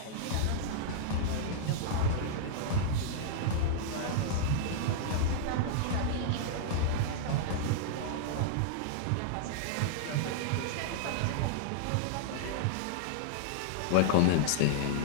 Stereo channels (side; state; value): both; different; correlation -0.01